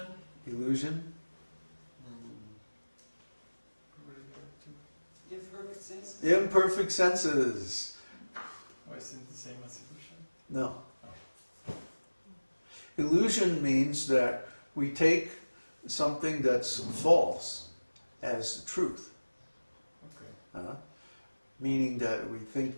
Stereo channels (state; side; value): inverted; both; correlation -1.00